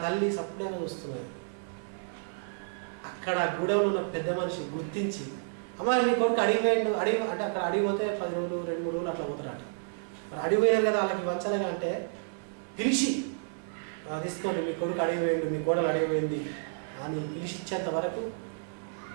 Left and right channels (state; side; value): silent; left; digital silence